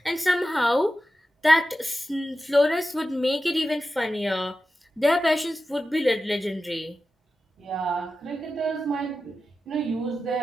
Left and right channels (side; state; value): both; normal; correlation 0.92